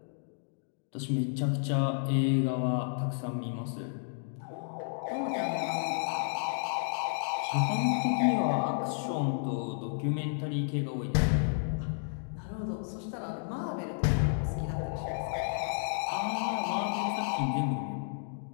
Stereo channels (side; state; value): right; silent; digital silence